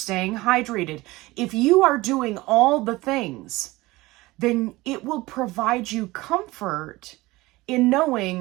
hydrated. If you are doing all the things, then it will provide you comfort in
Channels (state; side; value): quieter; left; 20.2 dB